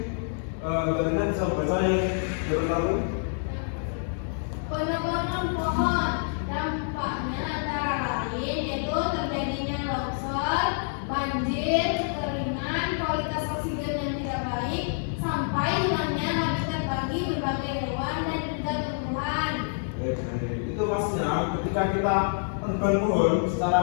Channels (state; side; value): silent; right; digital silence